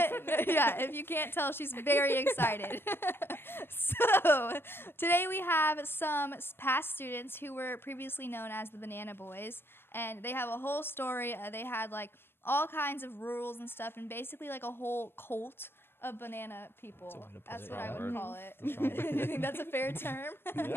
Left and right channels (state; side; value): late; right; 0.11 ms